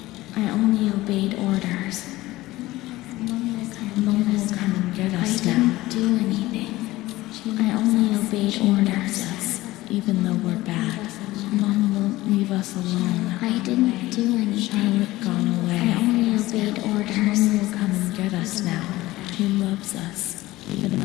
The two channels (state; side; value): quieter; right; 17.9 dB